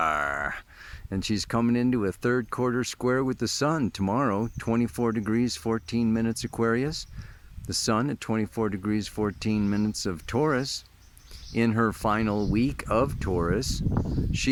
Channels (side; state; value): both; identical; correlation 1.00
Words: And she's coming into a third quarter square with the sun tomorrow, 24 degrees, 14 minutes Aquarius. The sun at 24 degrees, 14 minutes of Taurus. In her final week of Taurus,